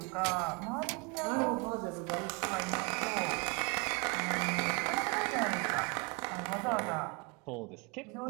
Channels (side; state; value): left; quieter; 30.6 dB